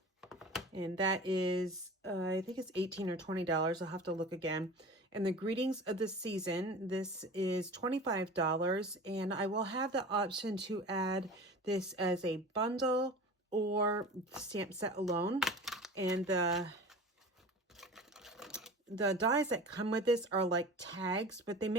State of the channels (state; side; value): normal; both; correlation 0.37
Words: And that is, I think it's $18 or $20. I'll have to look again. And the Greetings of the Season, this is $25. And I will have the option to add this as a bundle or stamp set alone. And the dies that come with this are like tags, but they